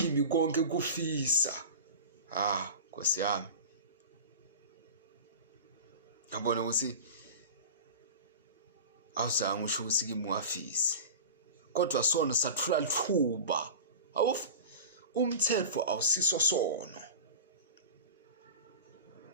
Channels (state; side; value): inverted; both; correlation -0.31